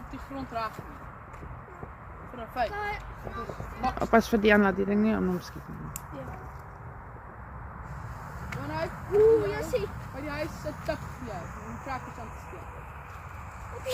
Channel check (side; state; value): both; identical; correlation 1.00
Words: die grond raak nie. Vir 'n feit. Pas vir Diana die ding nie om hom skiet nie. Wanneer Oeh, jy sien. by die huis sit tik jy om krakkers aan te steek.